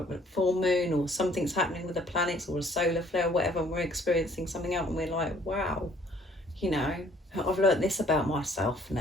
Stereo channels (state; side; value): normal; both; correlation 0.60